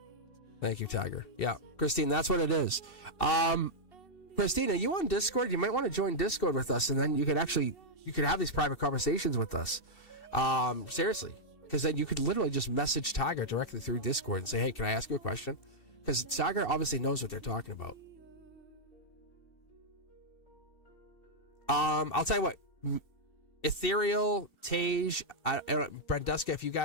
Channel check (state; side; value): late; right; 2.7 ms